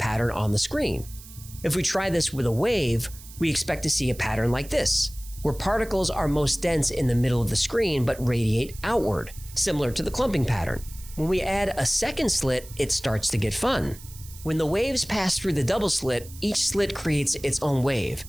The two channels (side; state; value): right; noise; hiss, 18 dB below the sound